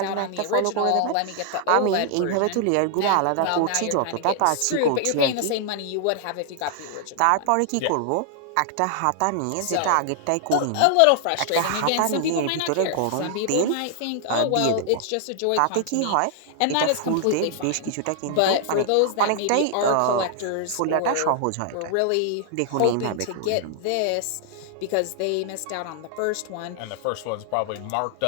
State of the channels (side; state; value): both; different; correlation 0.00